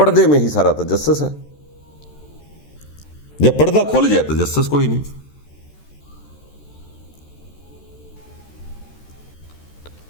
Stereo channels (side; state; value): right; late; 13 ms